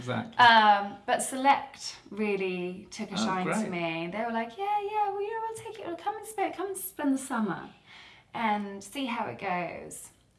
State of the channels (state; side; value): identical; both; correlation 1.00